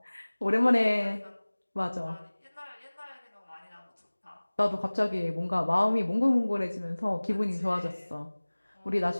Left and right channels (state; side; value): inverted; both; correlation -1.00